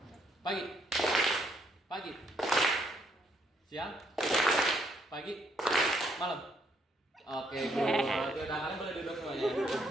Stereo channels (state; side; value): normal; both; correlation 0.71